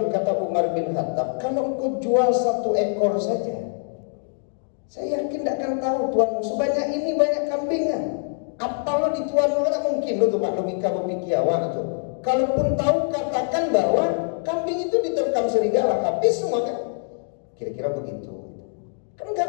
kata Umar bin Khattab, kalau engkau jual 1 ekor saja, saya yakin tidak akan tahu tuanmu sebanyak ini banyak kambingnya. Apa lo di tuanmu kan mungkin lo tuh Pak logika berpikiawan tuh. Kalaupun tahu katakan bahwa kambing itu diterkam serigala, habis semua kan. Kira-kira begitu. Kan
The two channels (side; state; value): right; silent; digital silence